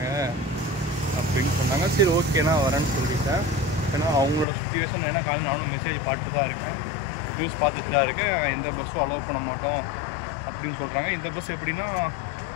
அப்படின்னு சொன்னாங்க. சரி ஓகேண்ணா வரேன்னு சொல்லிட்டேன். ஏன்னா அவங்களோட சுச்சுவேஷன் ஏன்னா காலையில் நானும் மெசேஜ் பார்த்துட்டு தான் இருக்கேன், நியூஸ் பார்த்துட்டு தான் இருக்கேன். எந்த பஸ்ஸும் அலோவ் பண்ண மாட்டோம் அப்படின்னு சொல்கிறாங்க. இந்த பஸ் எப்படின்னா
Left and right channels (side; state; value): right; drops out; at 4.5 s